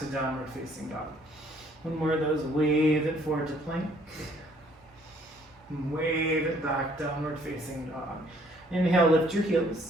downward facing dog. One more of those, wave it forward to plank. And wave it back, downward facing dog. Inhale, lift your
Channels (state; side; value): normal; both; correlation 0.62